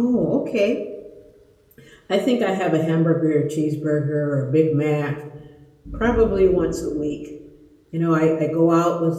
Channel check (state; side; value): identical; both; correlation 1.00